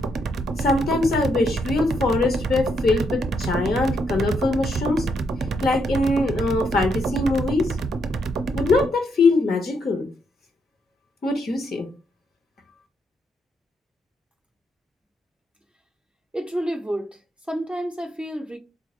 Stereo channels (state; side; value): normal; both; correlation 0.77